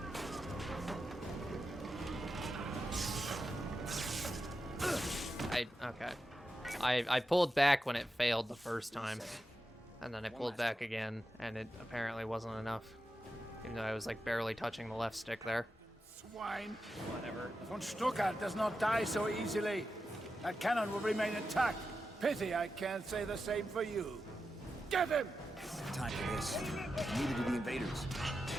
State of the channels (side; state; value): both; normal; correlation 0.89